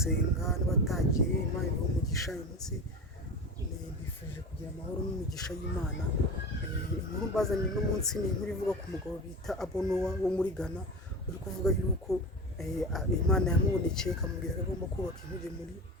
n'abatagiye, Imana ibahe umugisha. Uyu munsi bifuje kugira amahoro n'imigisha y'Imana. Inkuru mbazaniye uno munsi ni inkuru ivuga ku mugabo bita Abonowa wo muri Ghana, uri kuvuga yuko Imana yamubonekeye ikamubwira ko agomba kubaka inkuge muri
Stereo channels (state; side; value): normal; both; correlation 0.29